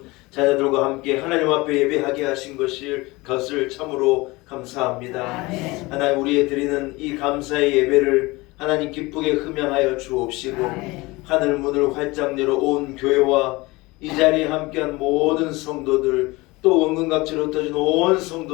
자녀들과 함께 하나님 앞에 예배하게 하신 것을 참으로 감사합니다. 하나님 우리의 드리는 이 감사의 예배를 하나님 기쁘게 흠양하여 주옵시고 하늘 문을 활짝 열어 온 교회와 이 자리에 함께한 모든 성도들 또 원근각지로 흩어진 온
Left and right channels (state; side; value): quieter; right; 22.4 dB